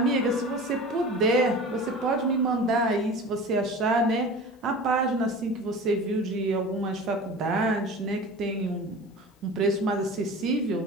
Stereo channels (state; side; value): normal; both; correlation 0.37